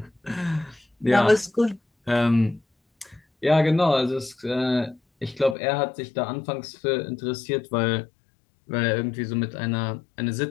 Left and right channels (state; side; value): drops out; right; at 5.6 s